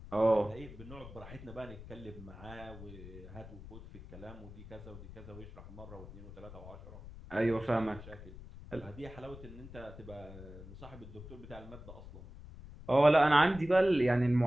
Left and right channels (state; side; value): noise; left; rumble, 15 dB below the sound